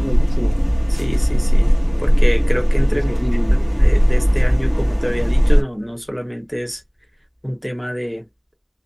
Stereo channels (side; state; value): both; identical; correlation 1.00